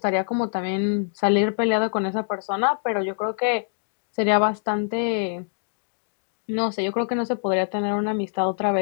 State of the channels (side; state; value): right; silent; digital silence